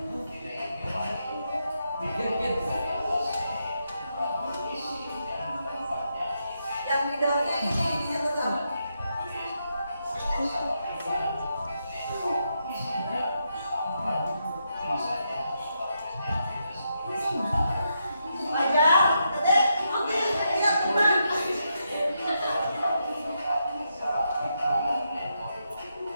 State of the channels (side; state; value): both; inverted; correlation -0.82